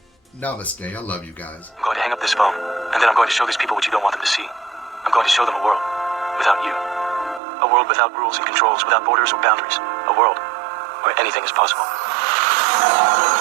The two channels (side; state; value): left; drops out; at 7.4 s